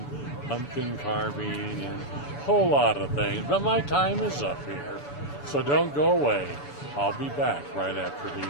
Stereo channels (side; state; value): right; late; 7.0 ms